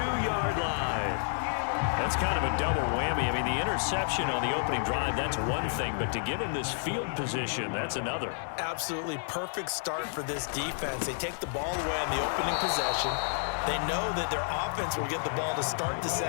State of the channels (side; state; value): right; silent; digital silence